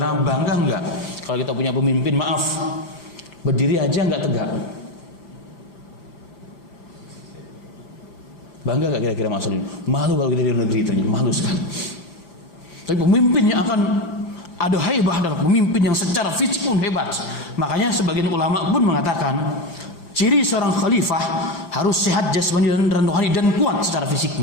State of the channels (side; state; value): right; late; 5.9 ms